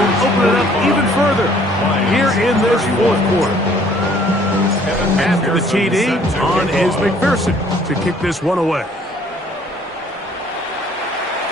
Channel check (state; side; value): normal; both; correlation 0.59